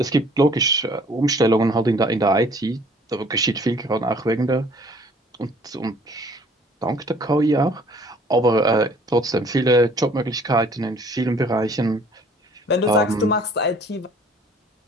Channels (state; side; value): normal; both; correlation 0.55